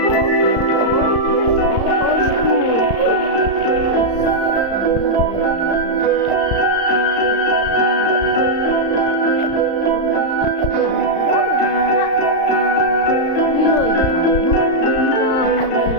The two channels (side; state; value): right; late; 35 ms